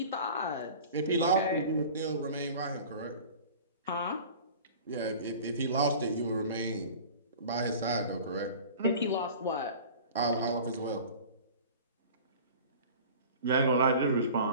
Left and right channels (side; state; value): both; inverted; correlation -0.41